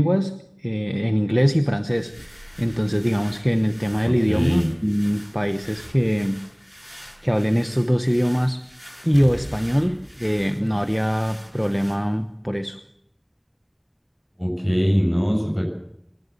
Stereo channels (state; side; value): identical; both; correlation 1.00